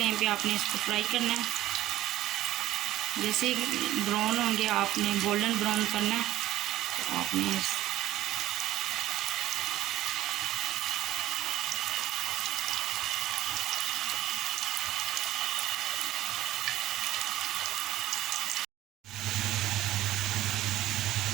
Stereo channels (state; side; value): quieter; left; 14.7 dB